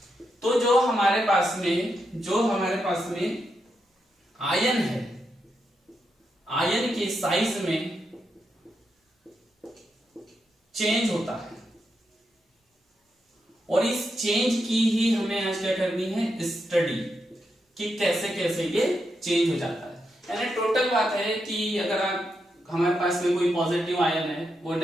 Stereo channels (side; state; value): both; normal; correlation 0.84